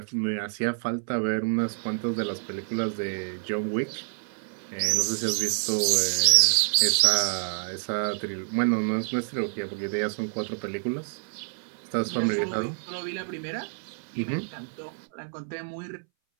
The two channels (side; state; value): left; silent; 60 dB below the other